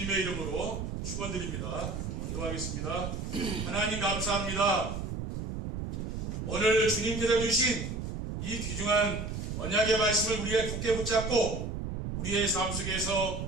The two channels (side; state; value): right; noise; rumble, 5 dB below the sound